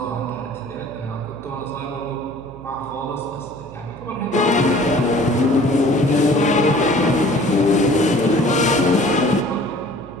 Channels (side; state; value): right; noise; hum, 18 dB below the sound